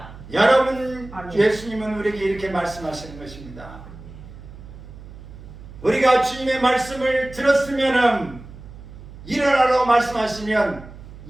여러분, 예수님은 우리에게 이렇게 말씀하시는 것입니다. 우리가 주님의 말씀을 들었으면, 일어나라고 말씀하시면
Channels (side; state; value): right; noise; hum, 16 dB below the sound